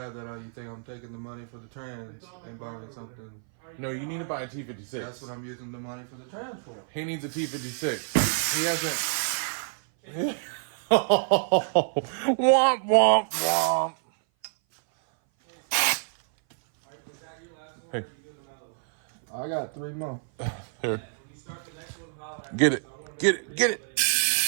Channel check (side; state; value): left; silent; 57 dB below the other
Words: that you think I'm taking the money for the trans and buying something. no, you need to buy a That's T56. what I'm using the money for the trans for. He needs a T56. He hasn't. Womp womp womp. Hey, I got 3 more. here. Get it. Get it. Get it.